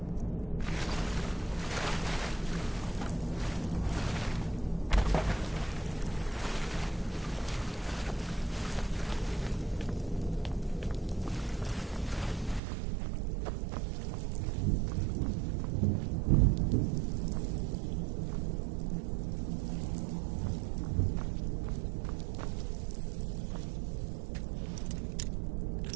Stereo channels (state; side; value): drops out; left; at 12.6 s